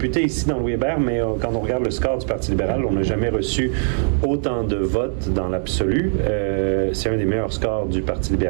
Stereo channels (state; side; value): silent; left; 65 dB below the other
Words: ici dans l'UEBER, mais quand on regarde le score du Parti libéral, on n'a jamais reçu autant de votes dans l'absolu. C'est un des meilleurs scores du Parti